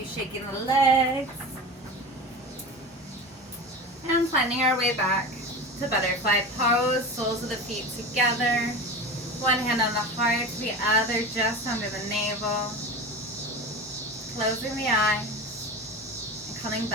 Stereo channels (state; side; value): normal; both; correlation 0.29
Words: shaking the legs. And finding our way back to butterfly pose, soles of the feet together. One hand on the heart, the other just under the navel. Closing the eyes. Coming